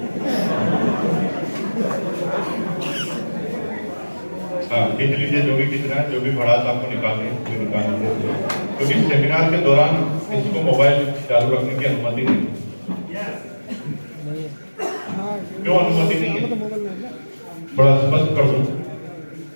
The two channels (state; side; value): inverted; both; correlation -1.00